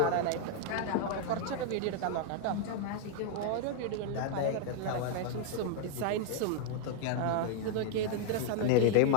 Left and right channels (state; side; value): different; both; correlation 0.00